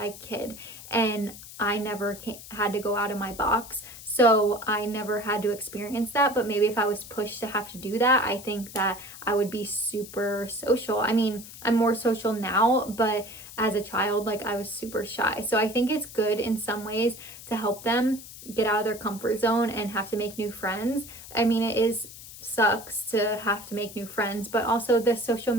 kid, and I never had to go out of my box, so I never had to experience that. But maybe if I was pushed to have to do that, I think that I would be super social. I mean, I'm more social now, but as a child, like, I was super shy. So I think it's good in some ways to help them get out of their comfort zone and have to make new friends. I mean, sucks to have to make new friends, but also the social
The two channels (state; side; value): noise; left; hiss, 15 dB below the sound